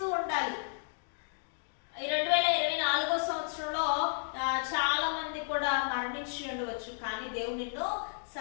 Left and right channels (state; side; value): silent; right; digital silence